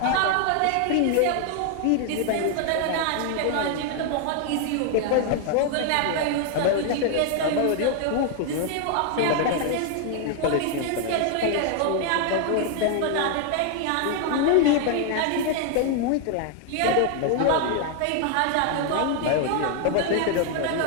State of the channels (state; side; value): different; both; correlation 0.00